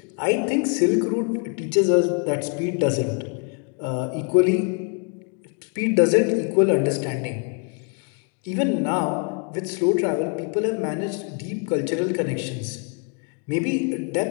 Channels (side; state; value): right; quieter; 38.4 dB